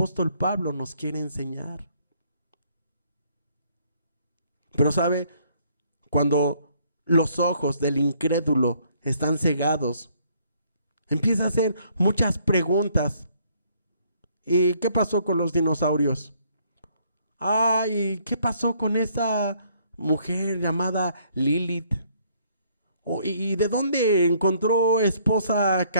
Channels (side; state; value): both; inverted; correlation -0.65